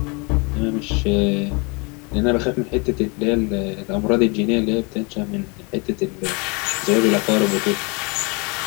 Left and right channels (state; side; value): quieter; right; 30.6 dB